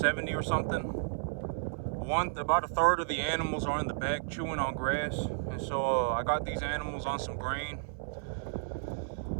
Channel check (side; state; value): left; silent; 56 dB below the other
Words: or something. About a third of the animals are in the back chewing on grass. And so I got these animals on some grain.